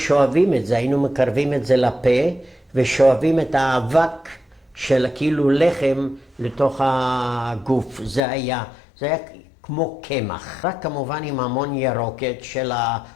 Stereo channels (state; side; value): drops out; right; at 8.2 s